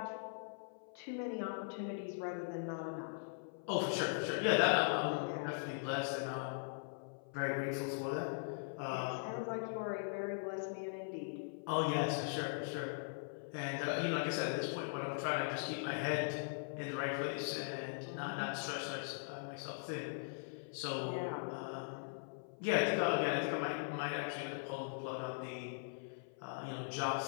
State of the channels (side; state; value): right; silent; 51 dB below the other